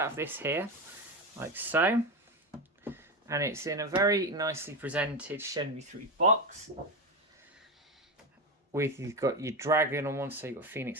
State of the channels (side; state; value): both; normal; correlation 0.16